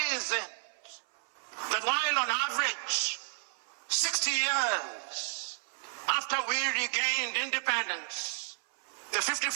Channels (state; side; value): silent; left; 55 dB below the other